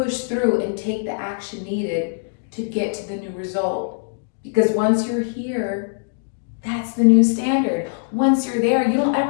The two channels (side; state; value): right; silent; digital silence